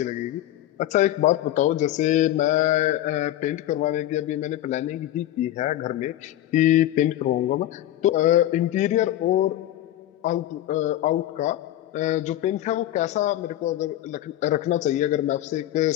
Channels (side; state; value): right; quieter; 13.4 dB